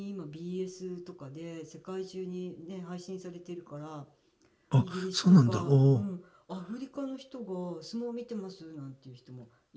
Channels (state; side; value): identical; both; correlation 1.00